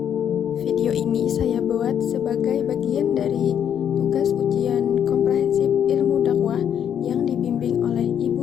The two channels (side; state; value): right; quieter; 9.0 dB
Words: Video ini saya buat sebagai bagian dari tugas ujian komprehensif ilmu dakwah yang dibimbing oleh